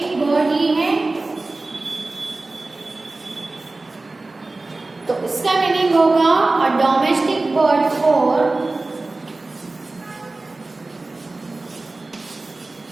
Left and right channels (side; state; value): left; quieter; 3.2 dB